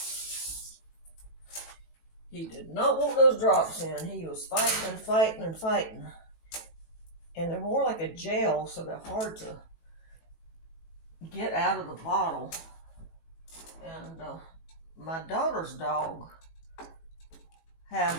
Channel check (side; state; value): right; late; 18 ms